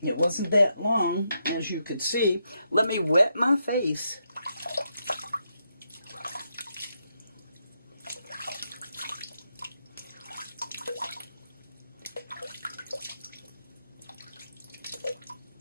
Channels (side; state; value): both; inverted; correlation -0.82